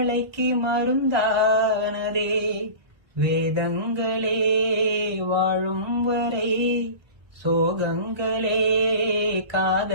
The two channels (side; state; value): left; late; 1.3 ms